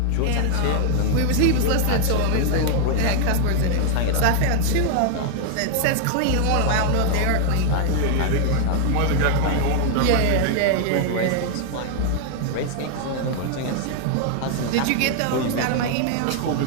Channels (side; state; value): both; different; correlation 0.00